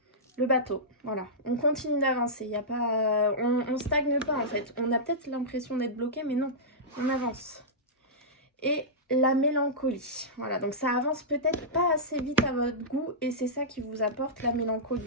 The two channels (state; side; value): normal; both; correlation -0.13